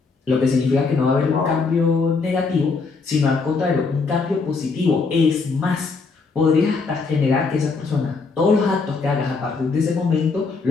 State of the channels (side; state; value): right; quieter; 4.4 dB